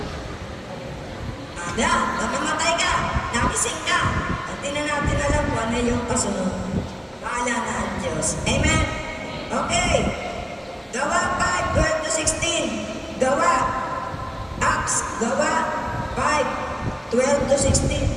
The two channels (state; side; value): identical; both; correlation 1.00